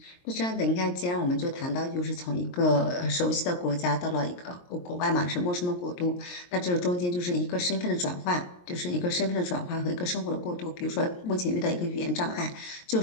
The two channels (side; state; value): right; late; 23 ms